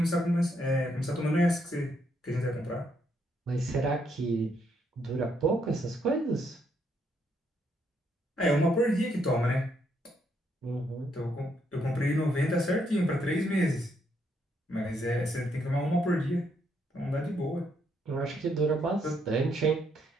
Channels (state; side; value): normal; both; correlation 0.74